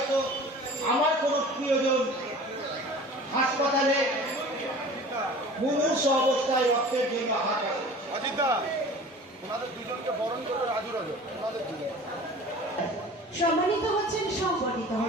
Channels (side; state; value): both; normal; correlation 0.42